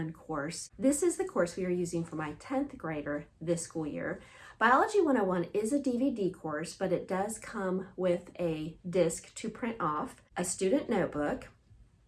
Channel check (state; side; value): identical; both; correlation 1.00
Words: course. This is the course we are using for my 10th grader this school year. Biology 101 is a DVD course, but it does come with a disc to print off, a student notebook,